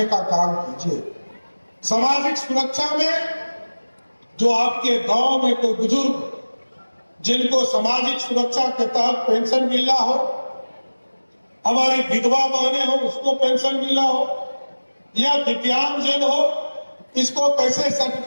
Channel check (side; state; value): both; inverted; correlation -1.00